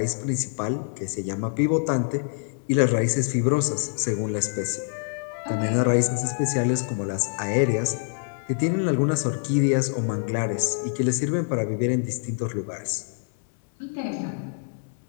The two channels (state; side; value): silent; right; digital silence